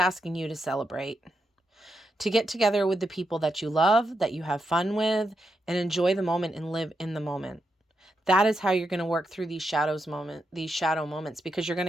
you to celebrate, to get together with the people that you love, that you have fun with, and enjoy the moment and live in the moment. That is how you're going to work through these shadow moments, because you're going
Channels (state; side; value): normal; both; correlation 0.84